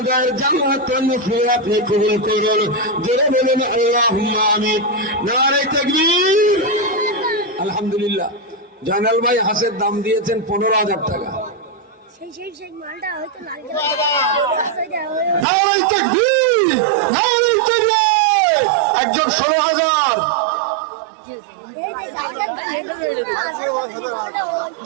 তার জান্নাতের নফিল আপনি কবুল করুন। জোরে বলুন আল্লাহুম্মা আমিন। নারে তাকবীর। আলহামদুলিল্লাহ। জয়নাল ভাই হাঁসের দাম দিয়েছেন 15,000 টাকা। নারে তাকবীর, নারে তাকবীর। একজন 16,000।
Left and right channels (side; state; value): left; drops out; at 15.5 s